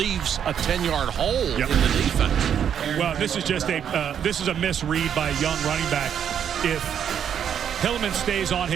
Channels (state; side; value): quieter; left; 8.7 dB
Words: a 10-yard hole in the defense. Well, this is just this is a misread by a young running back. If Hillman stays on